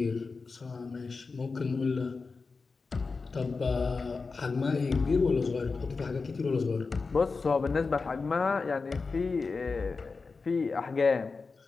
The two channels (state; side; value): quieter; right; 4.4 dB